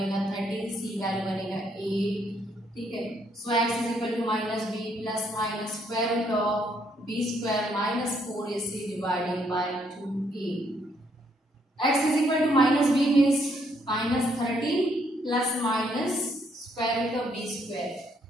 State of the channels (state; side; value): normal; both; correlation 0.71